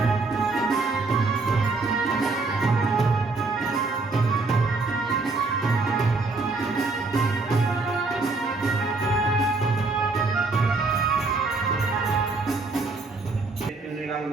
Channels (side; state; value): left; quieter; 3.6 dB